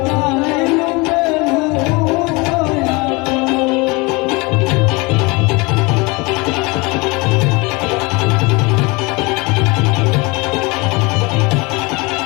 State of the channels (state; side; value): quieter; right; 26.1 dB